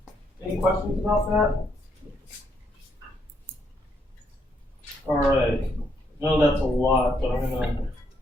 Any questions about that? All right. I know that's a lot, but I'm going to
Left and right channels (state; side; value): normal; both; correlation 0.74